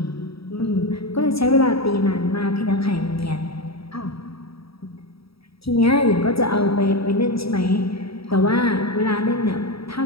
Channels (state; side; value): late; right; 0.76 ms